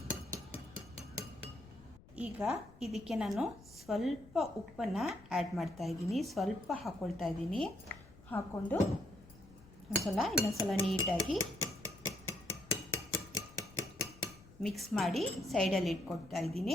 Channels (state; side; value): noise; left; rumble, 22 dB below the sound